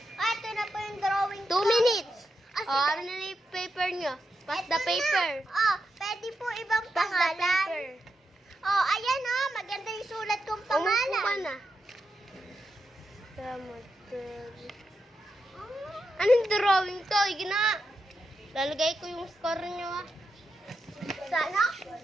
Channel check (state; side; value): normal; both; correlation 0.86